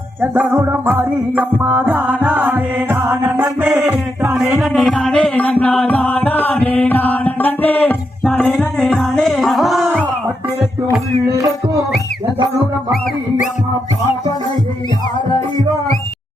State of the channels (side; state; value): both; normal; correlation 0.83